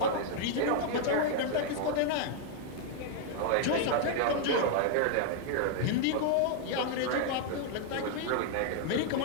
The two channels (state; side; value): different; both; correlation 0.00